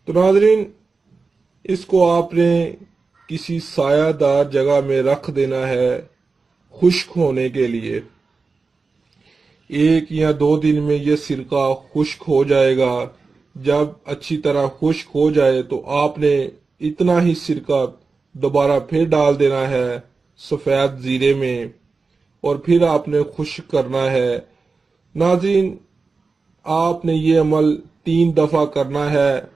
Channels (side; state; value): left; quieter; 4.3 dB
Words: تو ناظرین، اس کو آپ نے کسی سایہ دار جگہ میں رکھ دینا ہے خشک ہونے کے لیے۔ 1 یا 2 دن میں یہ سرکہ خشک ہو جائے گا۔ جب اچھی طرح خشک ہو جائے تو آپ نے اتنا ہی سرکہ دوبارہ پھر ڈال دینا ہے سفید زیرے میں، اور پھر آپ نے خشک کرنا ہے۔ ناظرین، آپ نے یہ عمل 3 دفعہ کرنا ہے۔